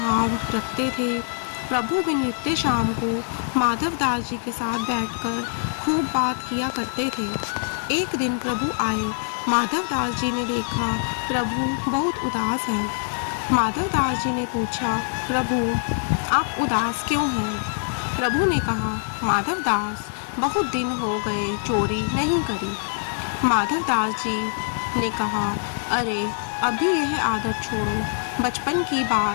रखते थे। प्रभु भी नित्य शाम को माधव दास जी के साथ बैठकर खूब बात किया करते थे। एक दिन प्रभु आए। माधव दास जी ने देखा प्रभु बहुत उदास हैं। माधव दास जी ने पूछा, प्रभु आप उदास क्यों हैं? प्रभु ने कहा, माधव दास बहुत दिन हो गए चोरी नहीं करी। माधव दास जी ने कहा, अरे अभी यह आदत छोड़ो, बचपन की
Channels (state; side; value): silent; right; digital silence